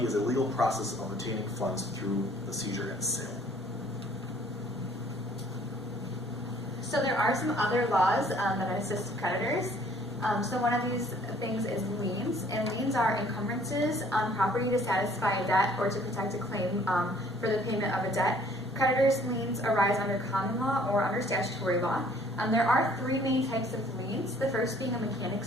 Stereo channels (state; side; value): normal; both; correlation 0.58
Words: is a legal process of obtaining funds through the seizure and sale. So there are some other laws that assist creditors. So one of these things is liens, and liens are encumbrances on property to satisfy a debt or to protect a claim for the payment of a debt. Creditors' liens arise under common law or under statutory law. There are three main types of liens, the first being a